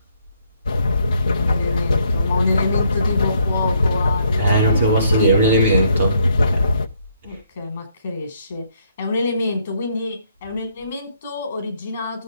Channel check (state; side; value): inverted; both; correlation -0.70